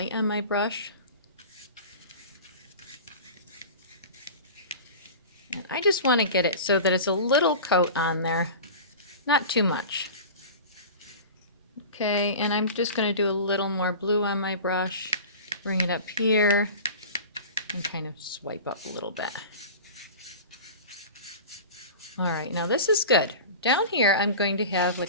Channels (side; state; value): both; inverted; correlation -0.35